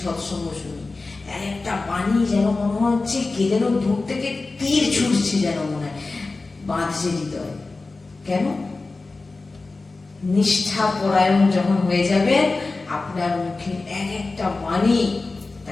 সৎসঙ্গ শুনি, একটা বাণী যেন মনে হচ্ছে কে যেন দূর থেকে তীর ছুটছে, যেন মনে হয় বাঁধছে হৃদয়। কেন? নিষ্ঠা পরায়ণ যখন হয়ে যাবে, আপনার মুখে একটা বাণী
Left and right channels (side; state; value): right; quieter; 3.6 dB